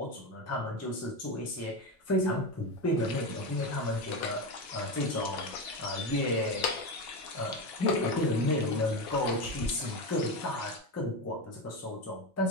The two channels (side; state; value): both; normal; correlation 0.17